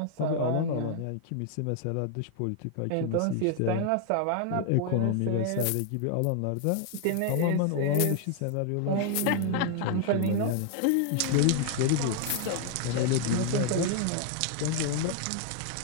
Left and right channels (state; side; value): different; both; correlation 0.00